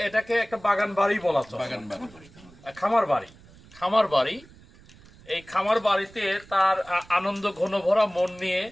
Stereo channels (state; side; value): noise; right; rumble, 24 dB below the sound